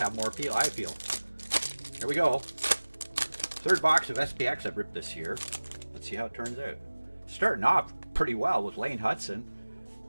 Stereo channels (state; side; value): inverted; both; correlation -1.00